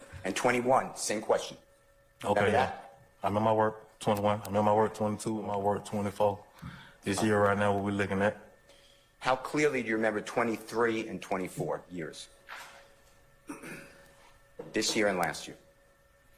And 21, same question. Okay. Remember Yeah. that? I'm in my work 21. I'm in my work 22. My work 24. This year right now, what we're looking at. How clearly do you remember 23 and 24 years? This year and last year.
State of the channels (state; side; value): identical; both; correlation 1.00